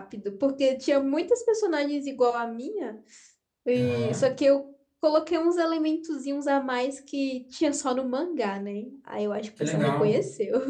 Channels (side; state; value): both; identical; correlation 1.00